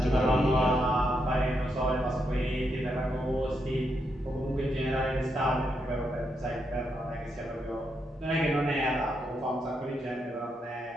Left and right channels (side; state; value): both; normal; correlation 0.81